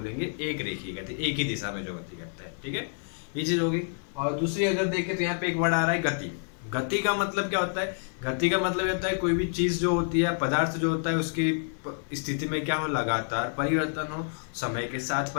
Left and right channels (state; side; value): silent; right; digital silence